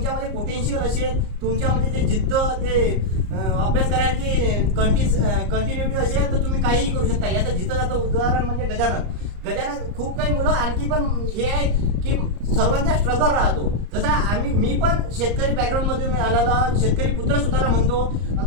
पोटेन्शियल असेल, तुमच्यामध्ये ते जिद्द, ते अभ्यास करायची कंटिन्युटी असेल, तर तुम्ही काहीही करू शकता. याचं जिथं जातं उदाहरण म्हणजे गजानन खूप काही मुलं आणखी पण हे आहे की सर्वांचा स्ट्रगल राहतो. जसा मी पण शेतकरी बॅकग्राऊंड मधून आलेला शेतकरी पुत्र सुद्धा म्हणतो.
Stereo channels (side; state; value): left; late; 34 ms